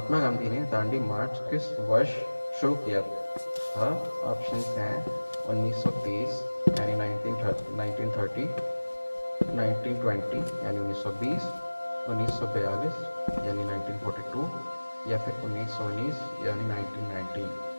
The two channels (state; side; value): inverted; both; correlation -1.00